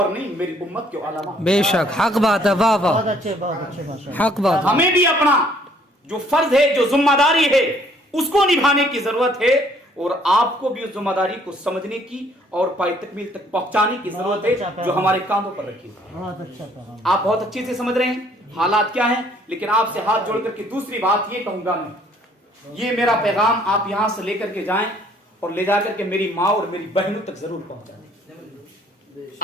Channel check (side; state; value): both; normal; correlation 0.62